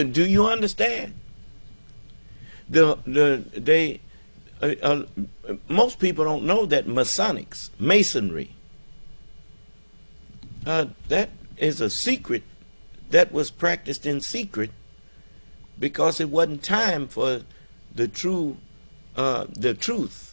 you understand? Most people don't know that Masonry, that is a secret that was practiced in secret because it wasn't time for the truth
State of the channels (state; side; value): inverted; both; correlation -1.00